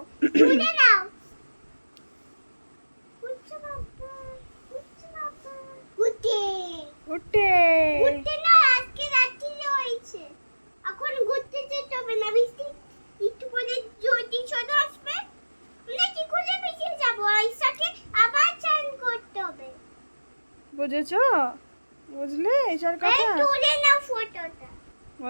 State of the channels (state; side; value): inverted; both; correlation -1.00